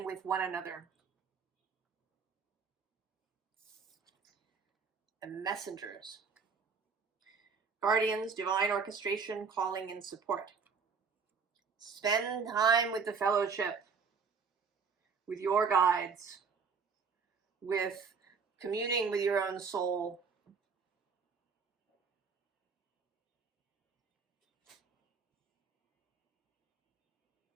with one another. And messengers. Guardians, divine orchestration, calling, and support. Spend time with the fellowship, with your guides, with communing with your own soul.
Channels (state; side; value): quieter; left; 5.5 dB